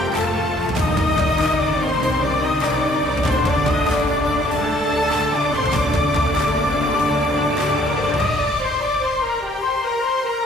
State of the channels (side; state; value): both; normal; correlation 0.61